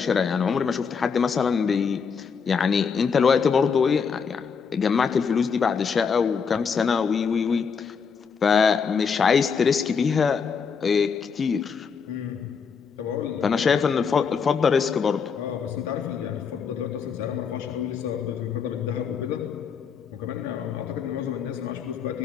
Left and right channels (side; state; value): right; quieter; 6.0 dB